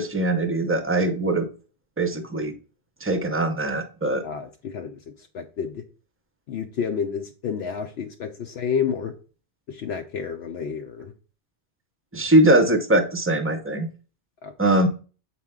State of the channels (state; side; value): normal; both; correlation 0.02